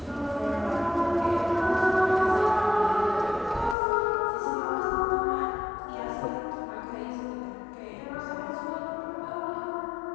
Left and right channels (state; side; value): drops out; right; at 3.8 s